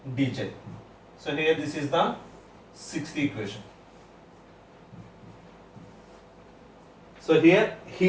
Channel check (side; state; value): both; identical; correlation 1.00